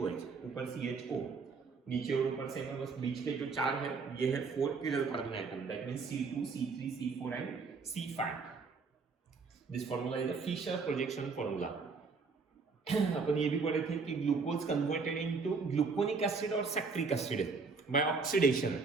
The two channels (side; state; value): left; quieter; 4.6 dB